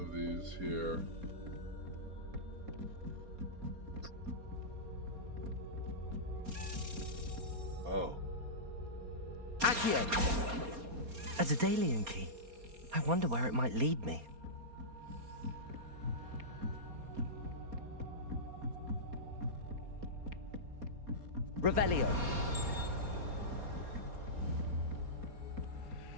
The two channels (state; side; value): late; left; 4.3 ms